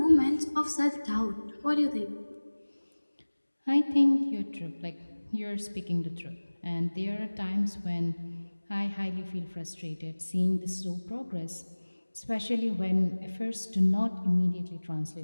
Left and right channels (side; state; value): both; inverted; correlation -1.00